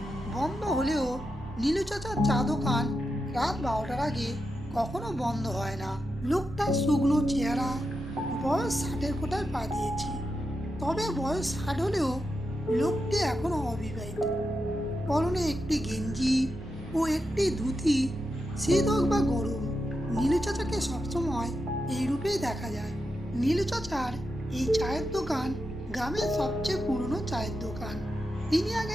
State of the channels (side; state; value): both; normal; correlation 0.87